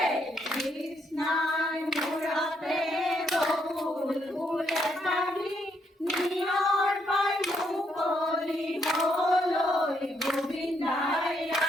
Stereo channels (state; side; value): normal; both; correlation 0.75